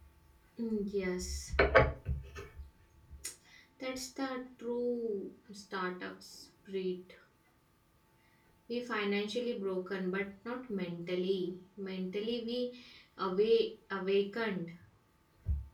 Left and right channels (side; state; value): both; identical; correlation 1.00